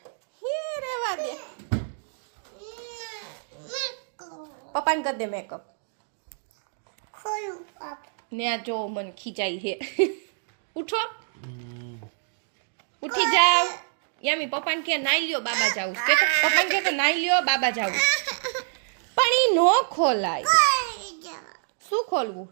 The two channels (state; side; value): silent; left; digital silence